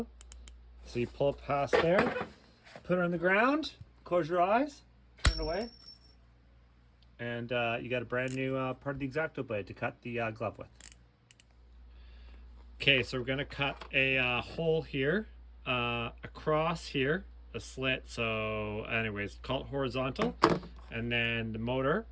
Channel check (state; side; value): identical; both; correlation 1.00